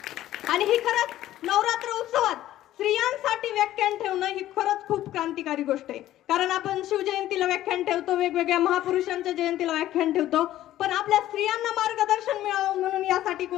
आणि ही खरंच नवरात्र उत्सवात स्त्रियांसाठी व्याख्यान ठेवणं ही खरंच खूप क्रांतिकारी गोष्ट आहे. कारण आपण शिवजयंतीला व्याख्यान ठेवतो, वेगवेगळ्या महापुरुषांच्या जयंतीला व्याख्यान ठेवतो, पण आपल्या स्त्रियांना मार्गदर्शन मिळावं म्हणून यासाठी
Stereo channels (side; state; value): right; quieter; 13.7 dB